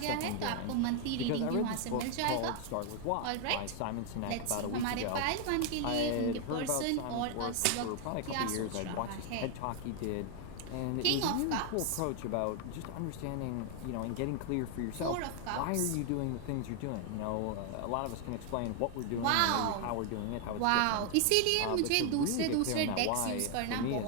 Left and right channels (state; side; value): different; both; correlation 0.00